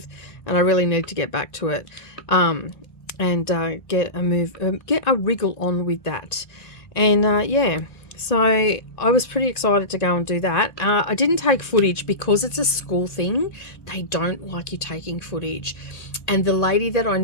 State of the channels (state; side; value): late; right; 1.8 ms